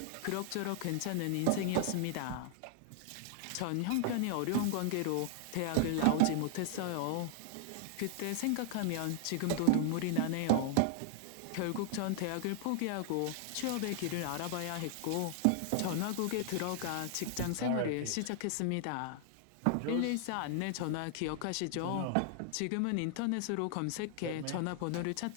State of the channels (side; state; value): both; different; correlation -0.01